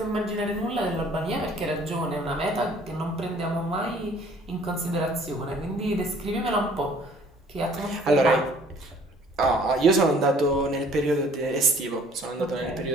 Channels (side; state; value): both; normal; correlation 0.56